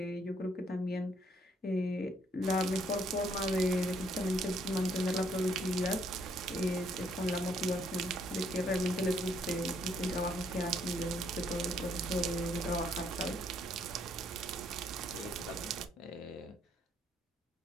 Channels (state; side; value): normal; both; correlation 0.69